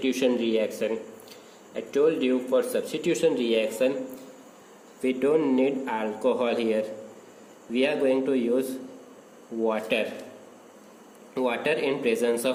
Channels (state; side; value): identical; both; correlation 1.00